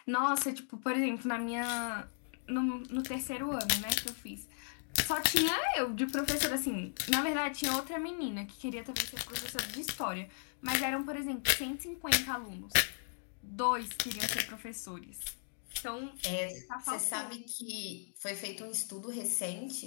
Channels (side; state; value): right; silent; digital silence